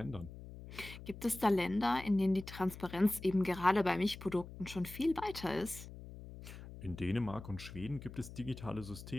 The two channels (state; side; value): noise; left; hum, 13 dB below the sound